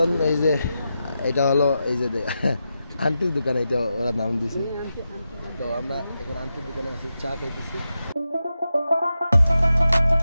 এই যে এটা হলো এই যে আন্টির দোকান, এটা ওরা নাম দিছে। তো আমরা এখন আন্টির দোকানে আছি, চা খাইতেছি।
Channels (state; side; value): inverted; both; correlation -0.89